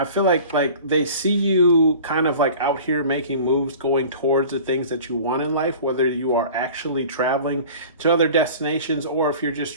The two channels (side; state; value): both; inverted; correlation -0.42